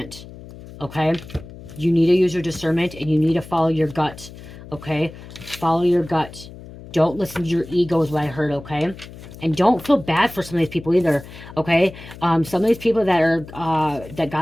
Okay? You need to use your discernment and you need to follow your gut. Okay? Follow your gut. Don't listen to your ego is what I heard. Okay? And don't feel bad for some of these people either. Okay? Some of these people that are that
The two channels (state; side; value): noise; left; hum, 16 dB below the sound